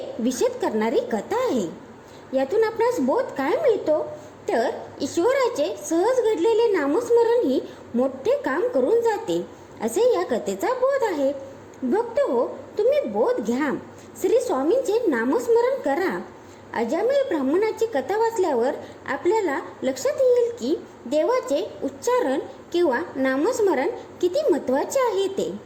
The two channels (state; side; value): identical; both; correlation 1.00